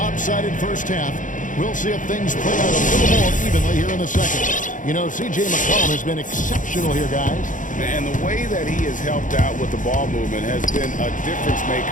first half. We'll see if things play out a little more evenly here in the second. You know, C.J. McCollum has been exceptional here, guys. And the way that he has helped out with the ball movement has been a difference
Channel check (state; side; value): late; right; 0.38 ms